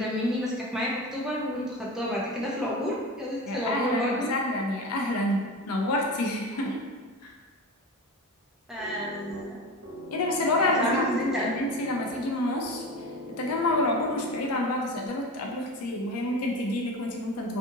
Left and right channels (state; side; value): normal; both; correlation 0.29